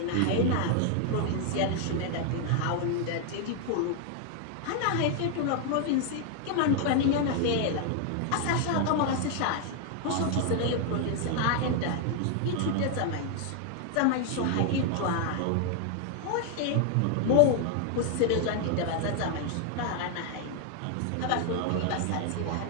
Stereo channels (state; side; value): different; both; correlation 0.00